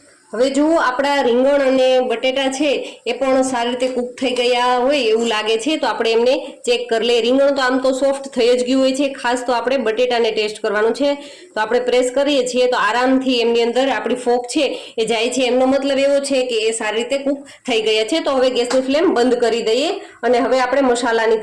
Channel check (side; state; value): both; identical; correlation 1.00